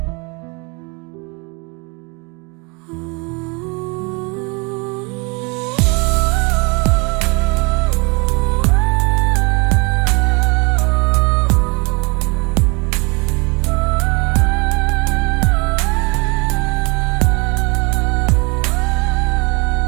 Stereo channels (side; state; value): left; quieter; 30.5 dB